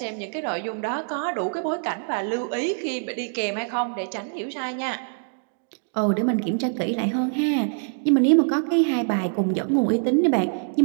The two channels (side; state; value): left; silent; digital silence